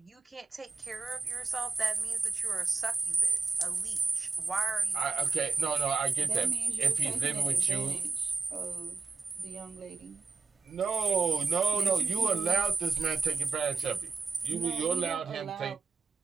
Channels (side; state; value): left; quieter; 4.4 dB